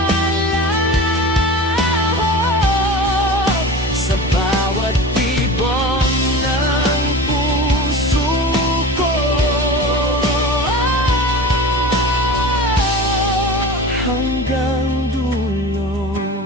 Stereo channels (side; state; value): both; normal; correlation 0.34